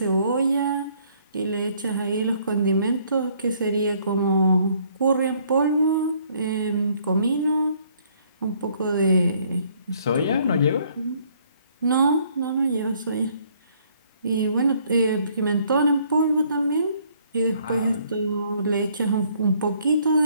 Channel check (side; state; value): both; inverted; correlation -0.64